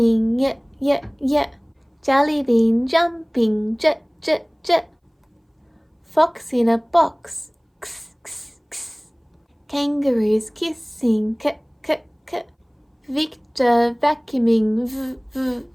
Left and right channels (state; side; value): identical; both; correlation 1.00